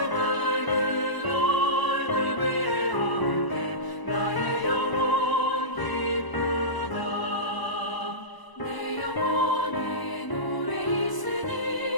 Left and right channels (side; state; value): right; late; 1.0 ms